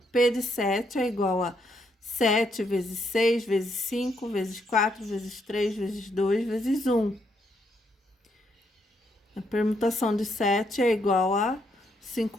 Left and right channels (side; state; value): both; normal; correlation 0.76